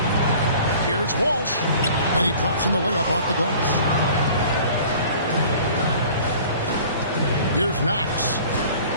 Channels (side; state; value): both; inverted; correlation -0.47